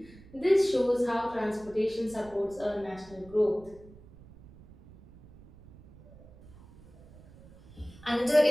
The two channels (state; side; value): noise; right; rumble, 22 dB below the sound